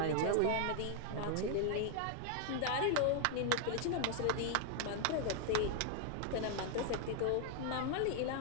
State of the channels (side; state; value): both; different; correlation 0.00